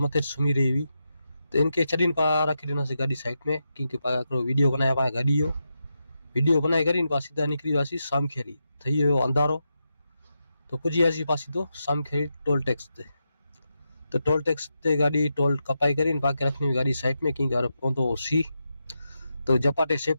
मथे सुमी रही हुई तो इनके चढ़ीन पा रखी देना से गाड़ी साइड में क्योंकि पा वीडियो बनाया पा गाड़ी हो वीडियो बनाई करीन पा सीधा निकली वासी सामखेरी थई हो अंधारो तो पुजी आसी पासी तो सामखेरी टोल टैक्स ते तो टोल टैक्स ते गाड़ी टोल कपाई करीन पाके रखनी गाड़ी साइड में की घर पहुंचो सी तो जपाटे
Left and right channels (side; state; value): both; inverted; correlation -0.87